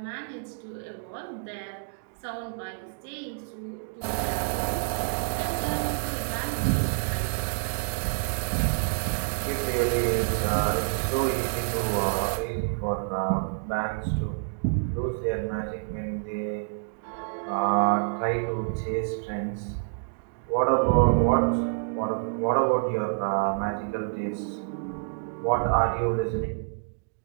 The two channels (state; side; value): silent; left; digital silence